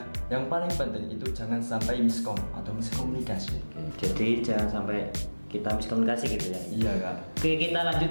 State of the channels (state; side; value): inverted; both; correlation -1.00